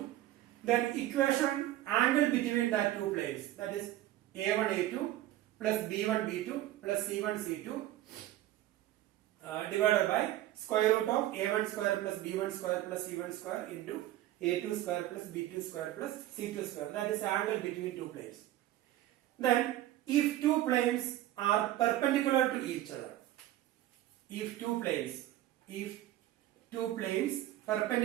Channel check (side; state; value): left; quieter; 14.3 dB